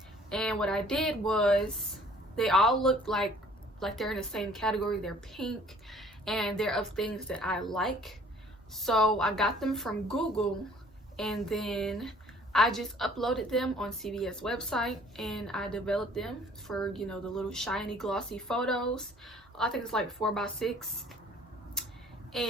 and what I did was they all look like they're in the same category. They're pink, and they're of things that I like. So I got them from Google, and then I just uploaded them on CVS website, and I developed them for, you know, the little shiny glossy photos. I think it's like 4x6,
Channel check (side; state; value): both; normal; correlation 0.55